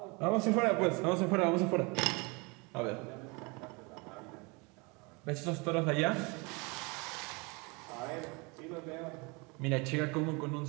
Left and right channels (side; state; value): left; quieter; 28.8 dB